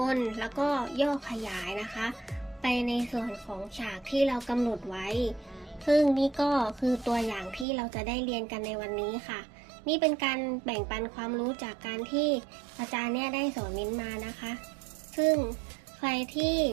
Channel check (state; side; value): drops out; left; at 7.7 s